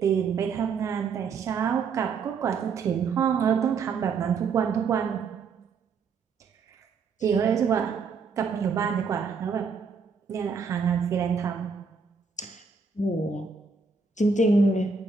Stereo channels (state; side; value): quieter; left; 5.1 dB